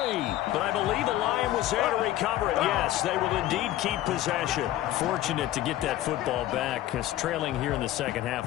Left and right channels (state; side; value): quieter; right; 14.1 dB